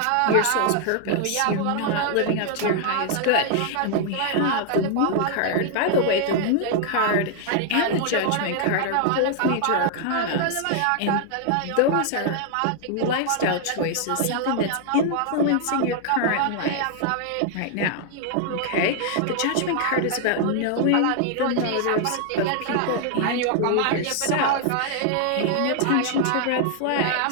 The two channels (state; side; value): different; both; correlation 0.00